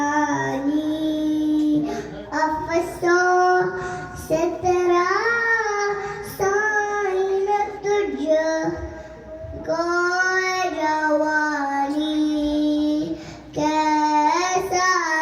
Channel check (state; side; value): identical; both; correlation 1.00